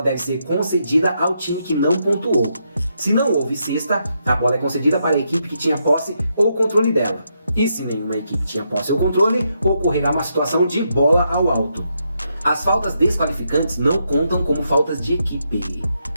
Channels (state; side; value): inverted; both; correlation -0.80